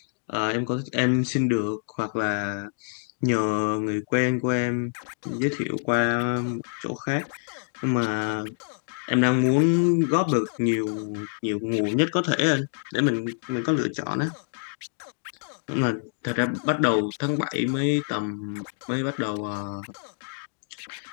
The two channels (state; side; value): silent; right; digital silence